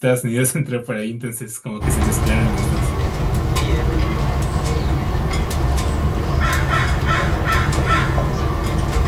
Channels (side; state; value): both; identical; correlation 1.00